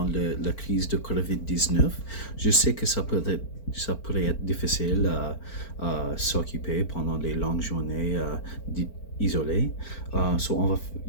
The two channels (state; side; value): late; right; 4.4 ms